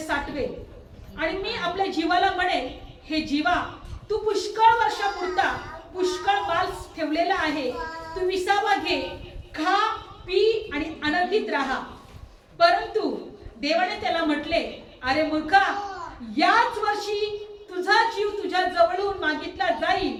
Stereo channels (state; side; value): identical; both; correlation 1.00